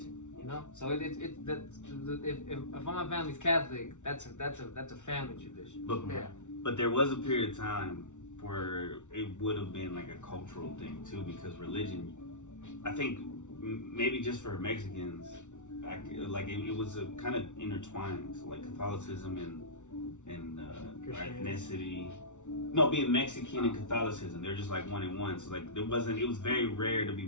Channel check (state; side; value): late; right; 0.85 ms